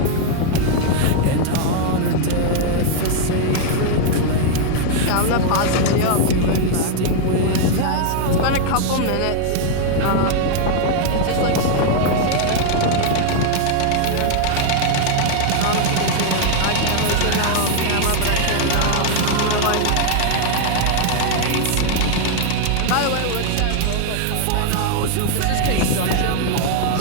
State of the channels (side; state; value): both; different; correlation 0.00